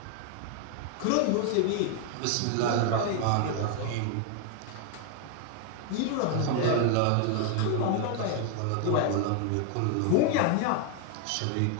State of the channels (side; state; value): both; different; correlation 0.00